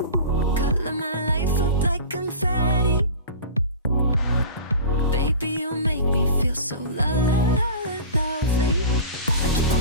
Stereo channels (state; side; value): inverted; both; correlation -0.35